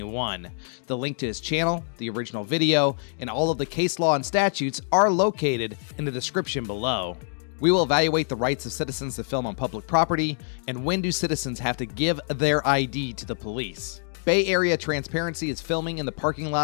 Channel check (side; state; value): right; silent; 61 dB below the other